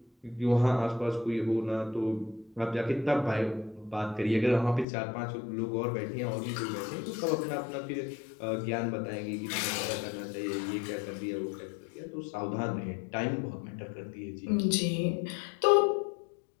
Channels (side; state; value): right; drops out; at 4.9 s